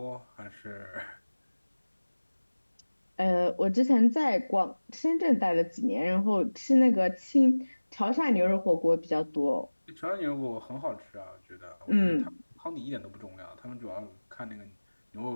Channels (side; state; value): both; inverted; correlation -1.00